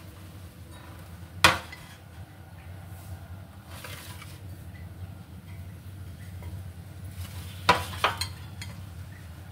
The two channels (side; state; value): both; identical; correlation 1.00